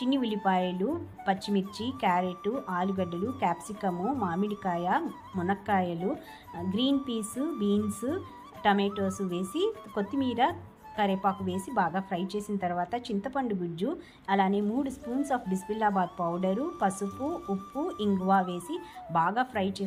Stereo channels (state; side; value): identical; both; correlation 1.00